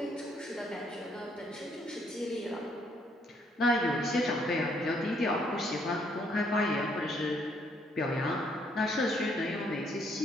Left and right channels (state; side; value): normal; both; correlation 0.69